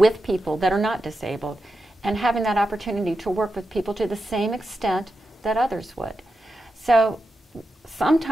people that are not disabled and having that opportunity to work with people to the same extent that others would. So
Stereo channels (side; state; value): both; normal; correlation 0.89